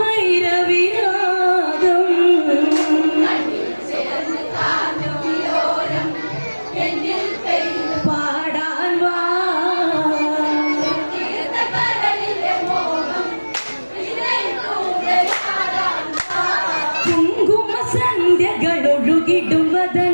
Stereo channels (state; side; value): inverted; both; correlation -1.00